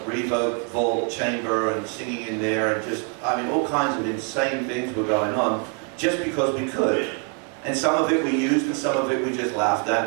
reverb vault chamber and singing in there, and just, I mean, all kinds of insane things were going on, just because we could. And some of it we used, and some of it we just laughed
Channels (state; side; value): quieter; left; 39.4 dB